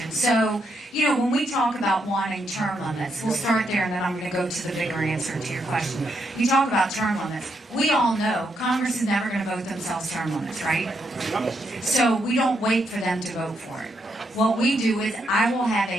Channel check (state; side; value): normal; both; correlation 0.79